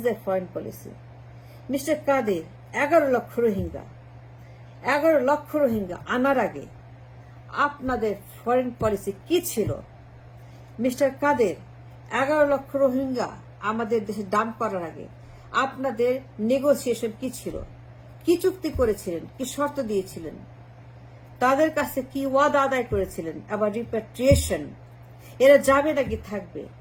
foreign policy. Mr. Kadir, 11 লক্ষ রোহিঙ্গা আনার আগে আপনাদের ফরেন পলিসি কি ছিল? মিস্টার কাদের, 11 লক্ষ রোহিঙ্গা আমাদের দেশে dump করার আগে আপনাদের নেগোসিয়েশন কি ছিল? কি চুক্তি করেছিলেন? কি শর্ত দিয়েছিলেন? তাদের কাছে কি ওয়াদা আদায় করেছিলেন? আবার রিপ্যাট্রিয়েশন, এরা যাবে নাকি থাকবে?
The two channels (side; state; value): both; identical; correlation 1.00